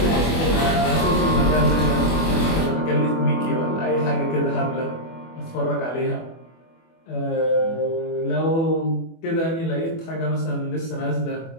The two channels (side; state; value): right; late; 24 ms